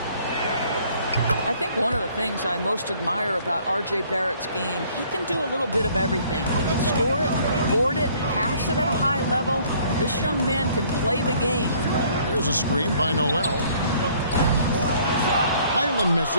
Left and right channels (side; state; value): both; inverted; correlation -0.59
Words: I think one of the things I most admire about R.J. Barrett's game, he can do a little bit of everything. He can score it, board it, pass it at a high level. This young man can play the game. There's a screen by Noel. Highland